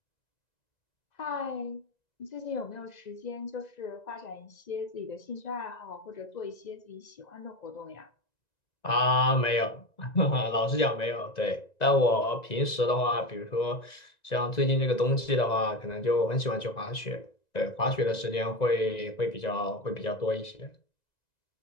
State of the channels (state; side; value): late; right; 1.9 ms